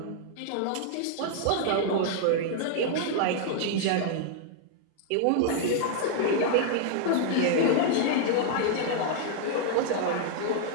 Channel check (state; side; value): different; both; correlation -0.01